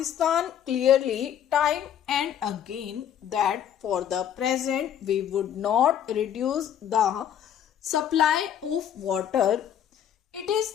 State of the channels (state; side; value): quieter; right; 9.7 dB